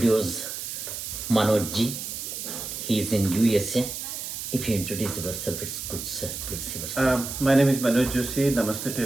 Manojji. He is in USA. If you introduce yourself, it's good, sir. Please yourself. My name is Manoj Joshi. Namaste to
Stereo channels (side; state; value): right; noise; hiss, 6 dB below the sound